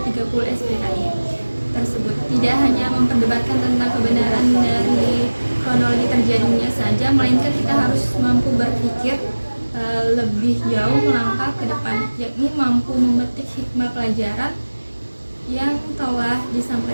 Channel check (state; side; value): inverted; both; correlation -1.00